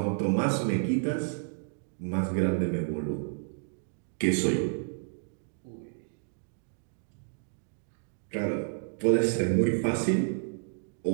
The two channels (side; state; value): left; silent; 57 dB below the other